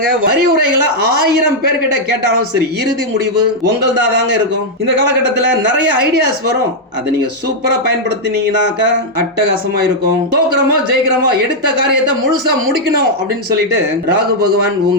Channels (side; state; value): both; normal; correlation -0.03